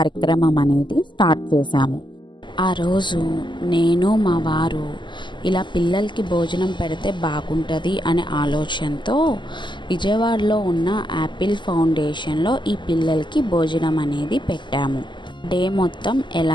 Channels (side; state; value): right; late; 0.22 ms